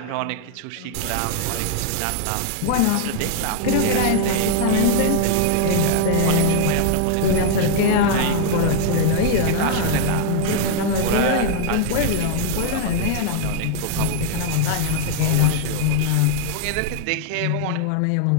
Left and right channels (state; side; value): different; both; correlation 0.00